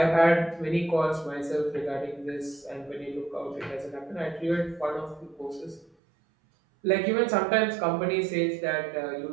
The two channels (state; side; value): drops out; left; at 5.9 s